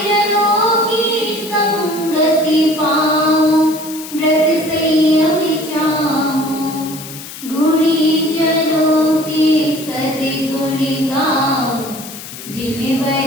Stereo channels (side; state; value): left; noise; hiss, 13 dB below the sound